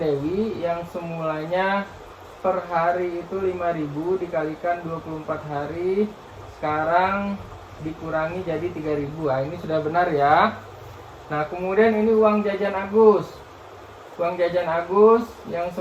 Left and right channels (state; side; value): identical; both; correlation 1.00